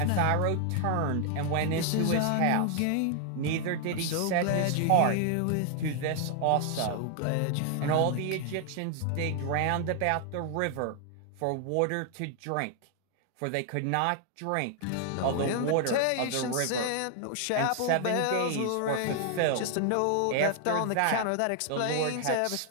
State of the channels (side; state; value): both; different; correlation 0.00